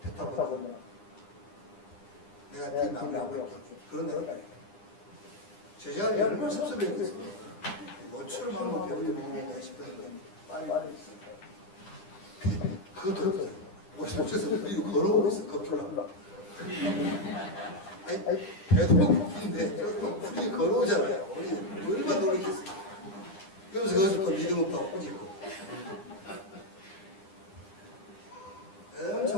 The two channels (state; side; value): late; right; 9.9 ms